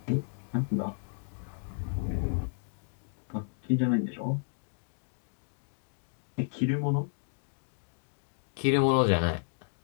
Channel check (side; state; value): right; silent; digital silence